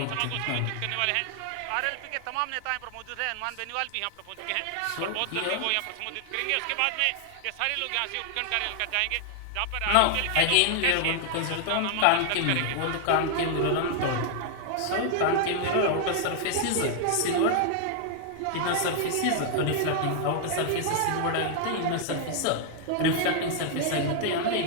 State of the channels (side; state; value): both; different; correlation 0.00